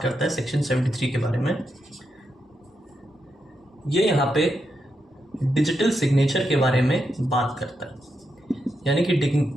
करता है सेक्शन 73 के बारे में। ये यहाँ पे डिजिटल सिग्नेचर के बारे में बात करता है, यानी कि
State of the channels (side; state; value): both; normal; correlation 0.84